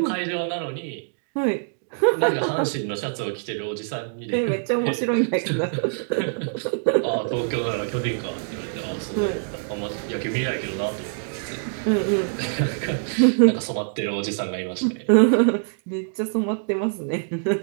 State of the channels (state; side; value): silent; left; digital silence